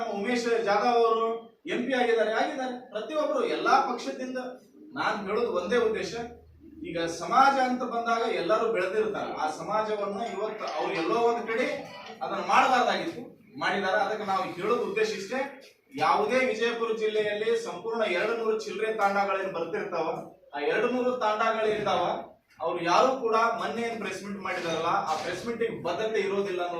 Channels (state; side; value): identical; both; correlation 1.00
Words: ಉಮೇಶ್ ಜಾಧವ್ ಅವರು MP ಆಗಿದ್ದಾರೆ. ಪ್ರತಿಯೊಬ್ಬರು ಎಲ್ಲಾ ಪಕ್ಷದಿಂದ. ನಾನು ಹೇಳೋದು ಒಂದೇ ಉದ್ದೇಶ, ಈಗ ಸಮಾಜ ಅಂತ ಬಂದಾಗ ಎಲ್ಲರೂ ಬೆಳೆದಿರ್ತಾರೆ. ಆ ಸಮಾಜವನ್ನ ಇವತ್ತು ಅವ್ರು ಎಲ್ಲೋ ಒಂದು ಕಡೆ ಅದನ್ನ ಮಾಡಬಾರ್ದಾಗಿತ್ತು, ಮಾಡಿದಾರೆ. ಅದಕ್ಕೆ ನಾವು ಹೇಳೋದು ಉದ್ದೇಶ ಇಷ್ಟೇ. ಯಾವುದೇ ವಿಜಯಪುರ ಜಿಲ್ಲೆಯಲ್ಲಿ ಸಂಪೂರ್ಣ 200 ಚಿಲ್ಲರೆ ತಾಂಡಗಳೇನು ಬರ್ತಿರ್ತಾವ, ಆ 200 ತಾಂಡಗಳಿರ್ತಾವ. ಅವ್ರು ಯಾರು ಕೂಡ ಮೊನ್ನೆ ಏನ್ ಪ್ರೆಸ್ ಮೀಟ್ ಮಾಡಿದಾರಲ್ಲ, ಆ ಪ್ರೆಸ್ ಮೀಟ್ ಬದ್ಧತೆ ಇರೋದಿಲ್ಲ